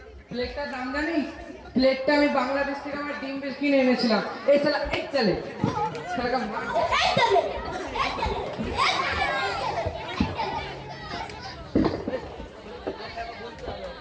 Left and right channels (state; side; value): identical; both; correlation 1.00